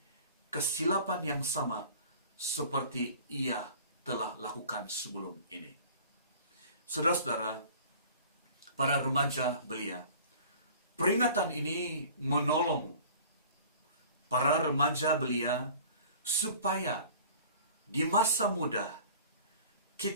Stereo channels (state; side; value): inverted; both; correlation -0.46